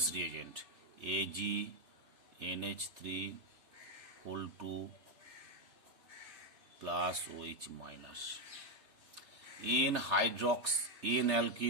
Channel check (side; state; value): left; late; 3.3 ms